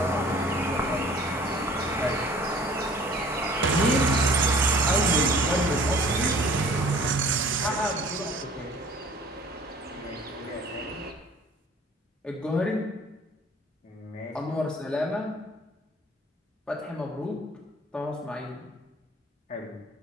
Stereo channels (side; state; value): both; normal; correlation 0.51